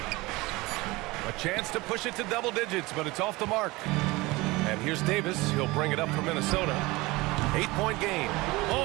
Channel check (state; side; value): quieter; left; 21.8 dB